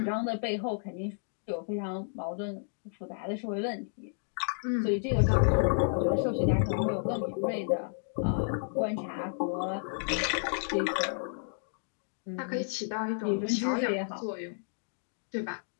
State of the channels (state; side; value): silent; right; digital silence